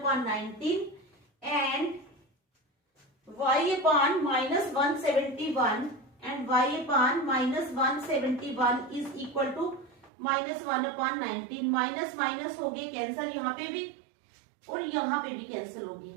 19 and y upon -171 and y upon -171 is equal to -1 upon 19। Minus minus हो गए कैंसिल, यहाँ पे भी और यहाँ पे भी कैंसिल हो गए।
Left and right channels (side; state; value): left; drops out; at 10.1 s